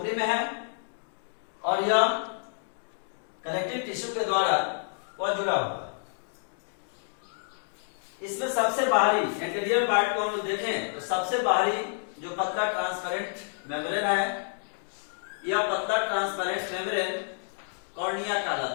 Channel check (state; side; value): silent; right; digital silence